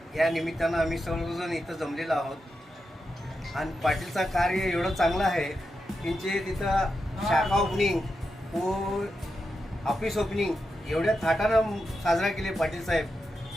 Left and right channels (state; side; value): normal; both; correlation 0.88